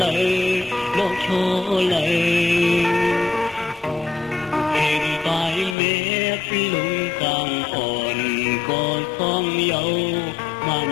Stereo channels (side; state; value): right; drops out; at 5.8 s